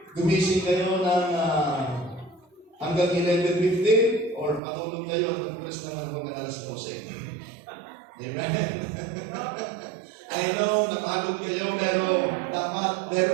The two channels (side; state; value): left; drops out; at 4.6 s